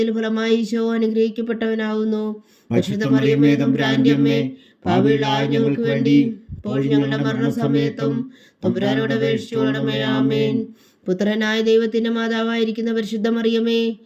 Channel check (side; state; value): both; identical; correlation 1.00